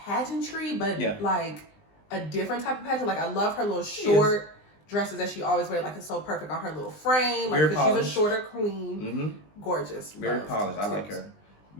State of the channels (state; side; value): late; right; 20 ms